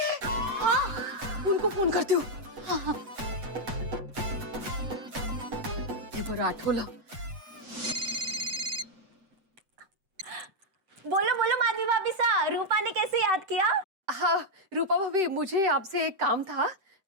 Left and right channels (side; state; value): left; late; 7.9 ms